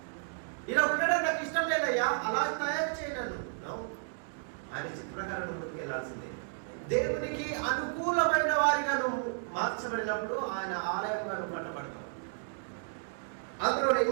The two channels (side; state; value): left; silent; digital silence